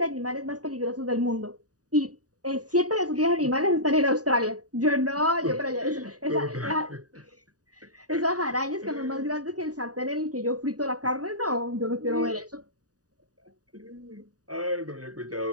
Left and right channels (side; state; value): left; late; 0.67 ms